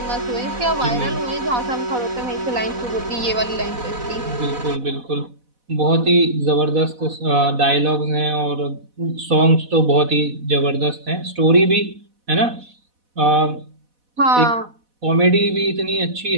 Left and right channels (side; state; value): left; late; 4.1 ms